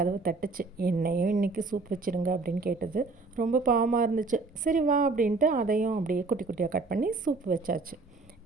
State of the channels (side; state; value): left; quieter; 3.8 dB